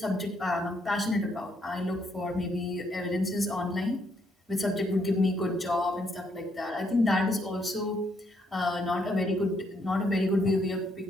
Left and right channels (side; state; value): both; normal; correlation 0.73